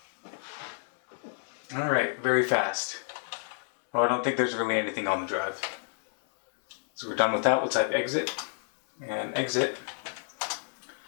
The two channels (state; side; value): silent; right; 57 dB below the other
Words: Alright, very fast. Well, I don't think there's really anything on the drive. So we're done with that. We'll type exit and exit.